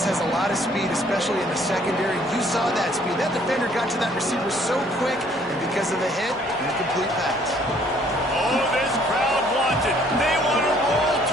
has a lot of speed, especially in the secondary. You saw that speed. That defender got to that receiver so quick, and because of the hit, incomplete pass. Oh, this crowd wants it. They want to roll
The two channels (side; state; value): both; normal; correlation 0.61